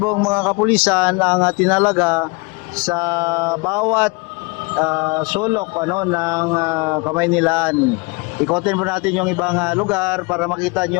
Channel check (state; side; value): quieter; right; 27.9 dB